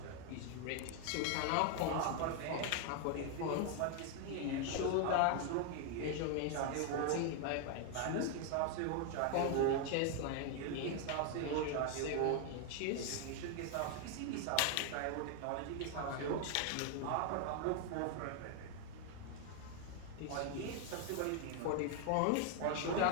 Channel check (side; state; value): both; different; correlation 0.00